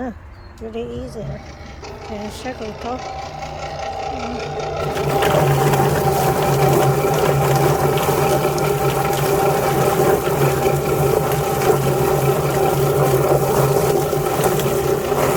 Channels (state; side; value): identical; both; correlation 1.00